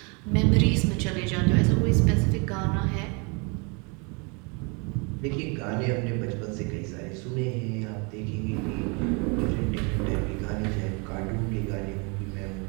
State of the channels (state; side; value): quieter; left; 32.4 dB